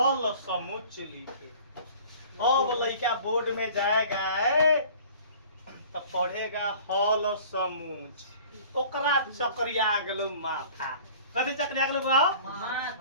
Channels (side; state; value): both; inverted; correlation -0.47